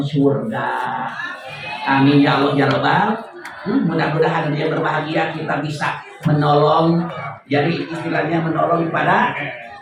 surga. Amin ya Allah ya Rabbal. Mudah-mudahan dia berbahagia, kita bisa menolong. Jadi istilahnya menolong kepada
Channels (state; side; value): identical; both; correlation 1.00